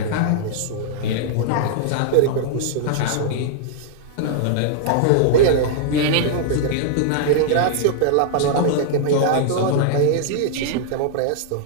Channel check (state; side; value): different; both; correlation -0.01